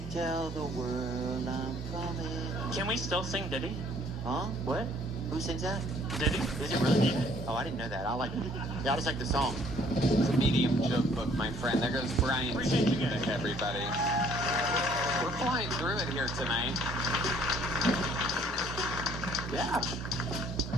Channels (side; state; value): both; normal; correlation 0.60